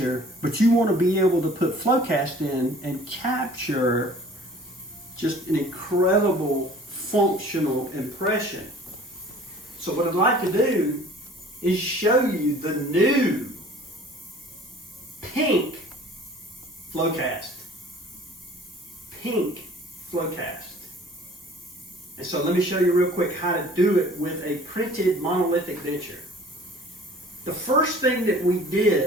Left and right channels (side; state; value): both; normal; correlation 0.49